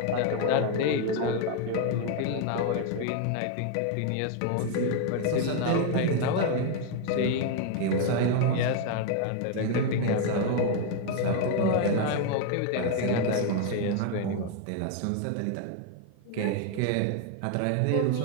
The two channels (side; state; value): both; different; correlation 0.01